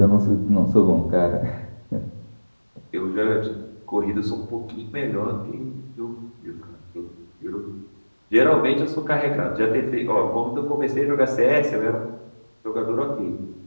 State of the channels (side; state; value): both; inverted; correlation -1.00